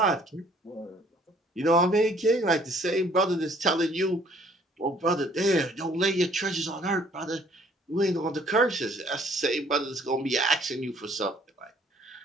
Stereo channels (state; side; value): normal; both; correlation 0.59